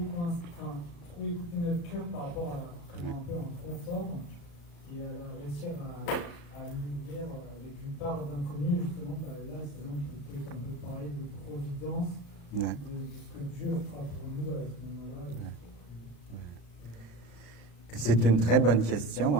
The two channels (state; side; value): late; right; 35 ms